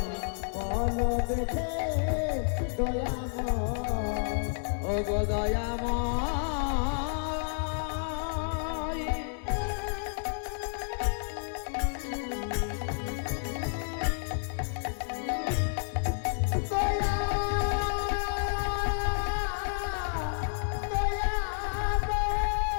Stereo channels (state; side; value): silent; right; digital silence